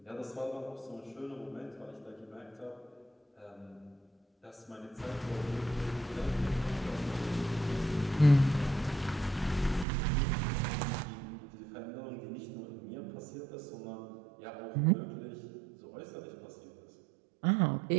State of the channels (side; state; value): left; drops out; at 9.9 s